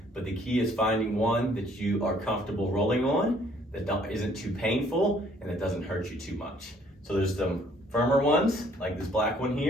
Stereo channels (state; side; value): normal; both; correlation 0.61